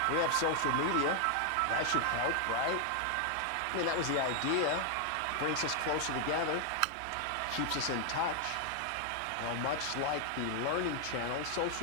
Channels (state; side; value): different; both; correlation 0.00